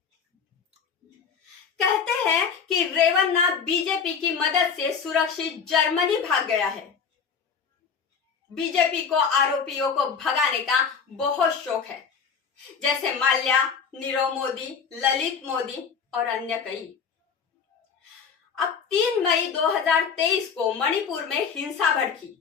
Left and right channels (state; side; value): quieter; right; 6.3 dB